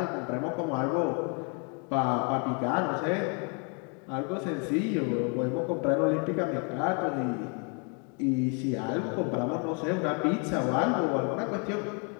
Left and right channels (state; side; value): quieter; right; 36.6 dB